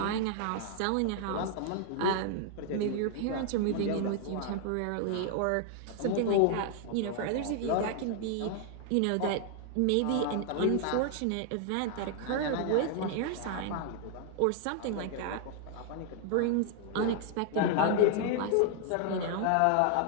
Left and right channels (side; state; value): both; different; correlation 0.00